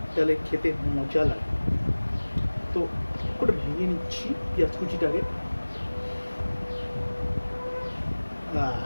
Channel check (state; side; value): inverted; both; correlation -1.00